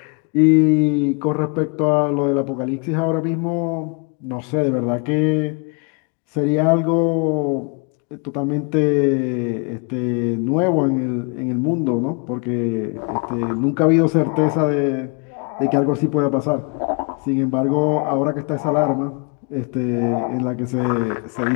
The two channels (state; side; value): quieter; right; 34.4 dB